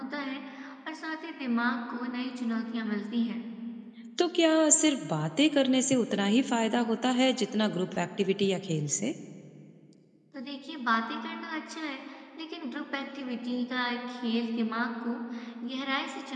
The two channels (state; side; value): identical; both; correlation 1.00